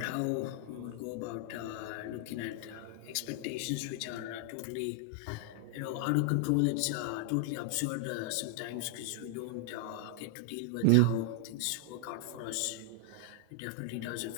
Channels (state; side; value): different; both; correlation 0.00